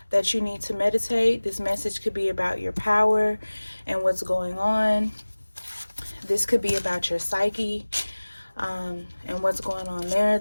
that you need to meditate. This message could be about your power and what's going on. This could be about your psyche and what's going on there.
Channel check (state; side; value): inverted; both; correlation -1.00